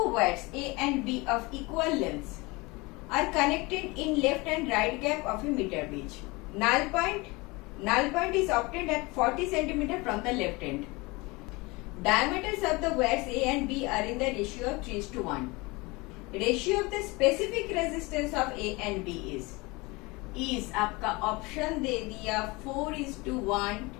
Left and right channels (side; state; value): right; quieter; 24.6 dB